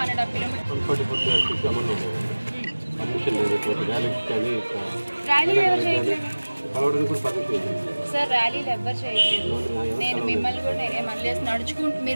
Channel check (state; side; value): inverted; both; correlation -1.00